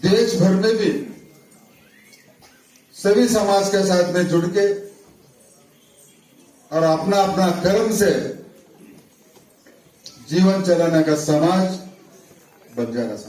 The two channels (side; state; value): both; identical; correlation 1.00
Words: देश भर में भी सभी समाज के साथ में जुड़ के और अपना अपना कर्म से जीवन चलाने का समाज बंजारा